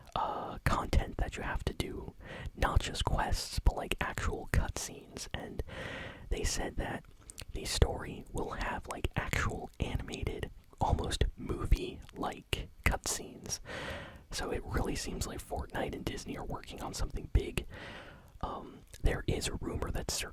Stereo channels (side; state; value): both; identical; correlation 1.00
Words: content that you have to do, not just quests, but like actual cutscenes. And they said that the story will have like actual animated, almost movie-like cutscenes. So it really seems like Fortnite and Disney are working on something big. There is a rumor that's